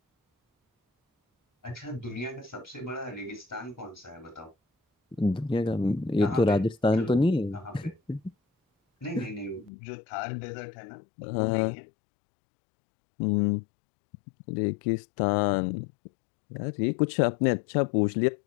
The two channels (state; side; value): drops out; right; at 9.7 s